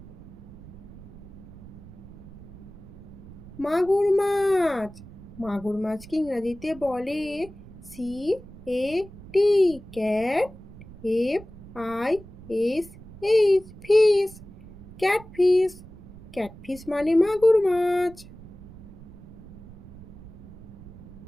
মাগুর মাছ, মাগুর মাছকে ইংরাজিতে বলে CAT, cat. FISH, fish. Catfish, catfish মানে মাগুর মাছ।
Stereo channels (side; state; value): right; noise; rumble, 17 dB below the sound